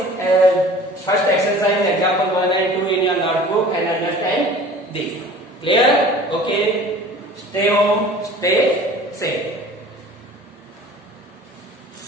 first exercise example 1 and 2 in your notebook and understand this. Clear? Okay. Stay home. Stay safe.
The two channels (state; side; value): normal; both; correlation 0.45